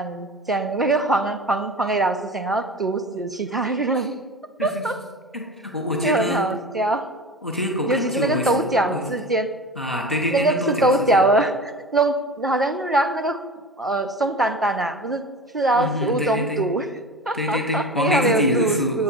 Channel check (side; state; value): both; normal; correlation 0.33